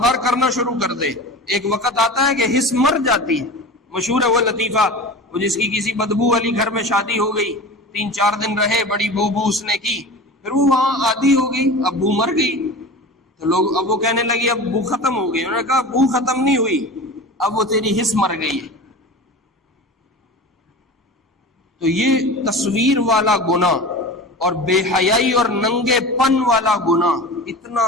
کرنا شروع کر دے، ایک وقت آتا ہے کہ حس مر جاتی ہے۔ مشہور ہے وہ لطیفہ، وہ جس کی کسی بدبو والی گھر میں شادی ہو گئی، 3-4 دن رہے، بڑی بو اس نے کی، پھر وہ وہاں عادی ہو گئی، اب بو مر گئی، تو لوگ اب وہ کہنے لگی اب بو ختم ہو گئی۔ انہوں نے کہا بو ختم نہیں ہوئی، اب وہ تیری حس مر گئی ہے۔ تو یہ تصویر والا گناہ اور بے حیائی اور ننگے پن والا گناہ اتنا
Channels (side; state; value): both; normal; correlation 0.33